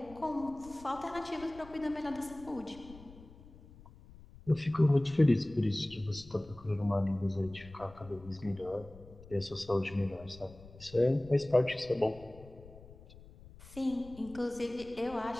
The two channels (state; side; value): noise; left; rumble, 20 dB below the sound